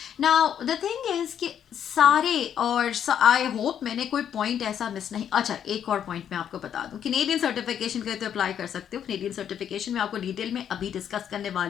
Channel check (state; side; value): quieter; right; 9.1 dB